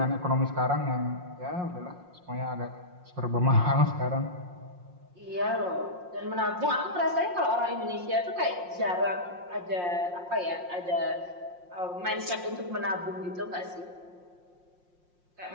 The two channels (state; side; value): late; left; 5.6 ms